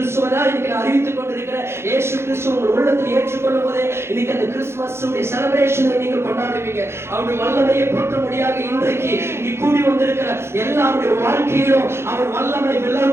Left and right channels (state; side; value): late; left; 0.12 ms